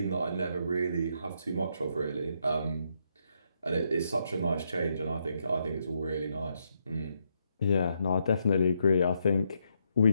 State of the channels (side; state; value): both; inverted; correlation -0.78